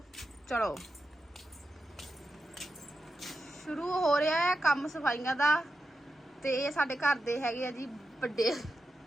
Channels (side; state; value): both; normal; correlation 0.89